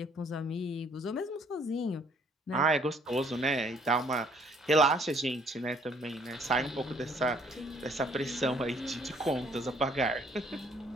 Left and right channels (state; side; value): normal; both; correlation 0.62